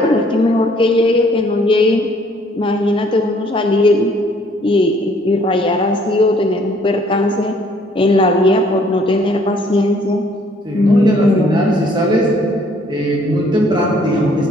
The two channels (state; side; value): normal; both; correlation 0.61